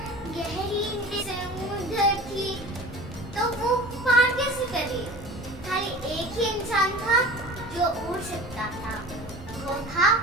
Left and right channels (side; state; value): both; normal; correlation 0.39